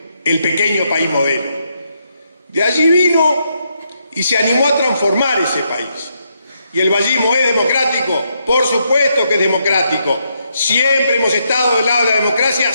el pequeño país modelo. De allí vino y se animó a transformar ese país. ¿Y el vallismo es democrático? Por supuesto que es democrático. Siempre hemos estado del lado de la democracia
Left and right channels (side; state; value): both; inverted; correlation -0.78